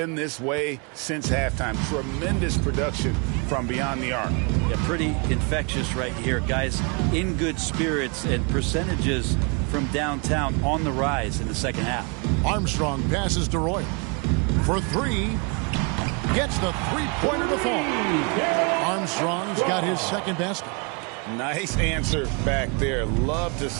this way since halftime. Tremendous production from beyond the arc. Yeah, pretty infectious right here. Guys in good spirits and percentages from downtown on the rise in the second half. Armstrong passes to Roy. For three. Gets the three-pointer to fall. Armstrong's got his second basket. Nice answer back there. Love to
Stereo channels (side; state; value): left; quieter; 33.3 dB